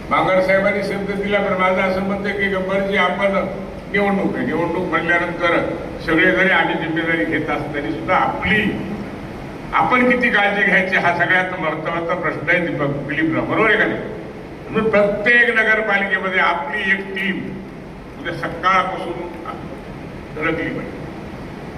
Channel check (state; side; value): identical; both; correlation 1.00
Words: बांगर साहेबांनी शब्द दिला. पण माझं असं म्हणतं की गब्बरजी, आपण निवडणूक म्हणल्यानंतर सगळे जरी आम्ही जिम्मेदारी घेत असतो तरी सुद्धा आपण किती काळजी घ्यायची हा सगळ्यात महत्वाचा प्रश्न आहे. दीपक दिलीपराव, बरोबर आहे का नाही? म्हणून प्रत्येक नगरपालिकेमध्ये आपली एक टीम उद्या सकाळपासून धडकली पाहिजे.